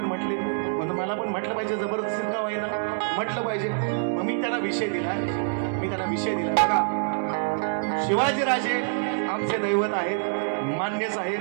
म्हटले, म्हणून मला पण म्हटलं पाहिजे, जबरदस्ती का होईना म्हटलं पाहिजे. मग मी त्यांना विषय दिला. बघा, शिवाजीराजे आमचे दैवत आहेत, मान्यच आहे.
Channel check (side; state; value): left; silent; 61 dB below the other